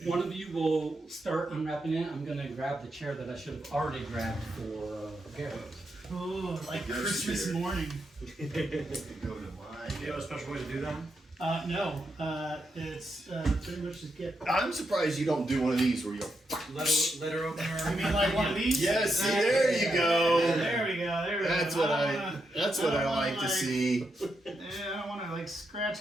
one of you will start unwrapping it, I'm gonna grab the chair that I should have already grabbed for Garrett. Oh, like Yes, Christmas dear. morning. Go to mine. Do you have a special way to do that? No. It's pretty much just get. I'm surprised you don't do one of these where you go. Letter opener. I mean, like one of these. Yes, see, there you go. There we go. There we That's go. what That's what I like to see. Yeah, I don't want to like scratch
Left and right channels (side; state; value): both; normal; correlation 0.83